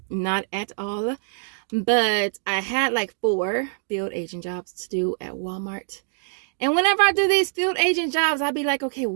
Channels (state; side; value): silent; left; digital silence